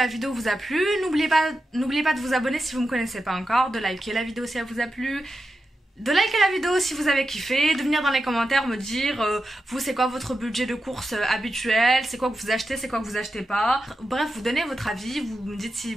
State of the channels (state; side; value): normal; both; correlation 0.89